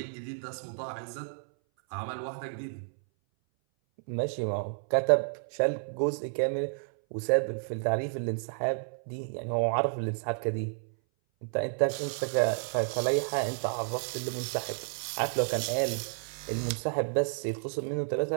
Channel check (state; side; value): silent; left; 57 dB below the other